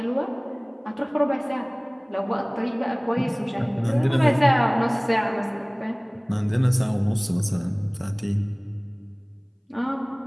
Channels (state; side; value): identical; both; correlation 1.00